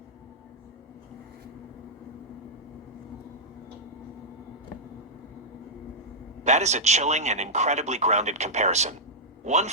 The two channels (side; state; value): both; normal; correlation -0.07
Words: That is a chilling and incredibly grounded comparison. One